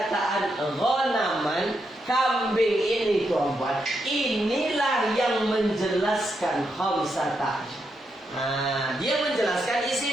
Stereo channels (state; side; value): normal; both; correlation 0.82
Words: ghanaman, kambing ini tuan-puan, inilah yang menjelaskan khamsata asyar. Dia menjelaskan